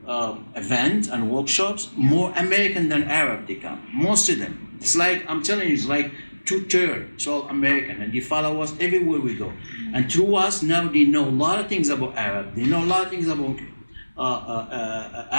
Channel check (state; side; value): inverted; both; correlation -1.00